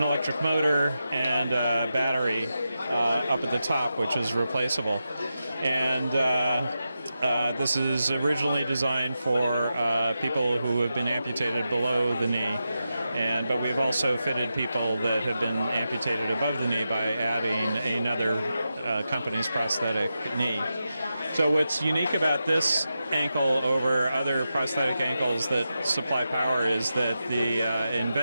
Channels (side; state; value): both; inverted; correlation -0.89